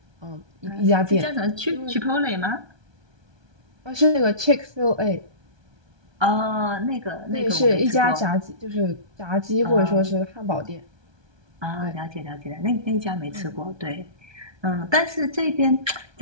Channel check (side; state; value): left; late; 1.2 ms